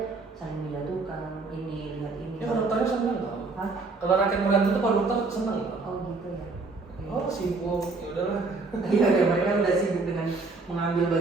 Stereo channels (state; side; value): quieter; left; 3.8 dB